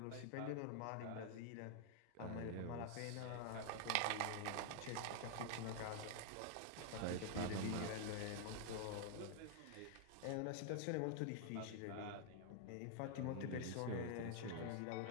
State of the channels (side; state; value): both; different; correlation 0.00